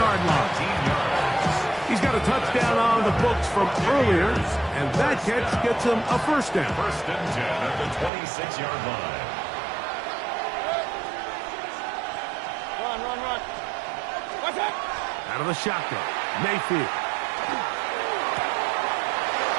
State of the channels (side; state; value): left; drops out; at 8.1 s